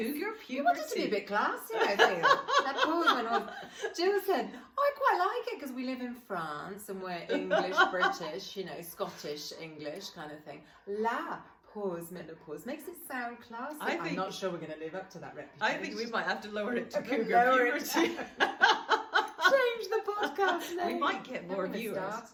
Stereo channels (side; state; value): both; identical; correlation 1.00